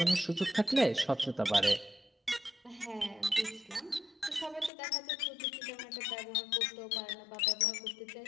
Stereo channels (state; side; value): drops out; right; at 4.7 s